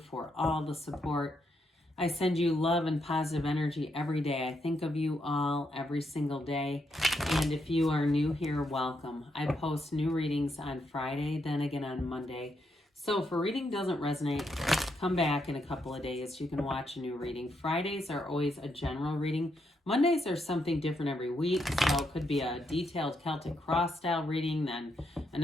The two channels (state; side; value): normal; both; correlation 0.79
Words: all the support. I send you love and positive energy every day. I think of you all every single day. And if you are new here, welcome. I post new readings on Friday, then again on Monday. So if a reading doesn't resonate, come back in a couple of days. You can watch a new reading. Fridays are always a general reading. Mondays are something different every week. So it could be a detailed Celtic cross style reading, then